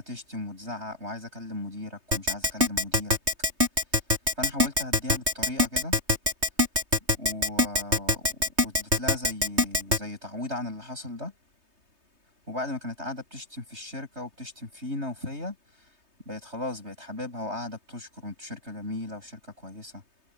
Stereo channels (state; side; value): late; left; 3.2 ms